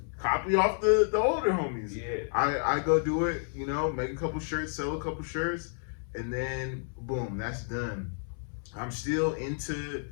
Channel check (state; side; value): silent; right; 57 dB below the other